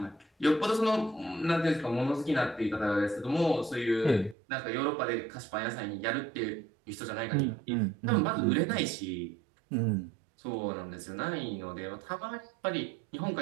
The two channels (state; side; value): drops out; left; at 4.4 s